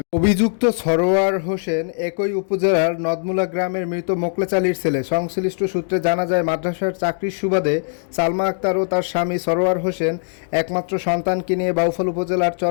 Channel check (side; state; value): right; silent; digital silence